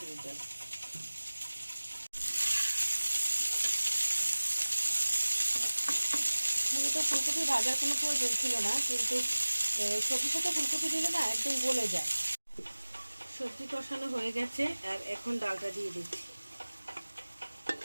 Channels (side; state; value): both; inverted; correlation -1.00